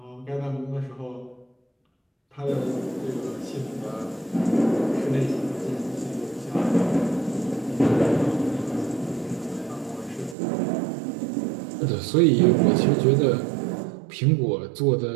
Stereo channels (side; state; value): left; drops out; at 10.4 s